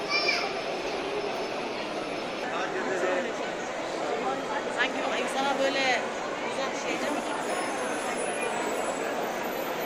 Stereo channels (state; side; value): identical; both; correlation 1.00